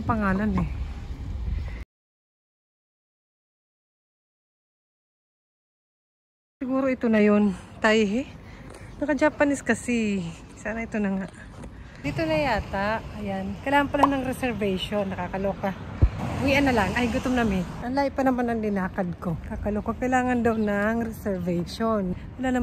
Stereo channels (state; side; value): identical; both; correlation 1.00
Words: pangalan eh. Siguro ito na yun. Taihe. Naka-Japanese kasi. Sana ito na nga. Dito na yata. Ayan. Kailangan pala ng reservation. Nakakaloka. Uwian na lang. Ay, gutom na mi. Ang layo pa naman ang dinakad ko. Kakaloka. Kailangan daw ng reservation. Wala